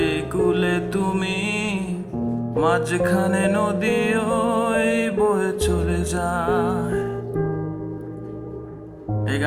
এই কুলে তুমি, মাঝখানে নদী ওই বয়ে চলে যায়। এই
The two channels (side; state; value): both; identical; correlation 1.00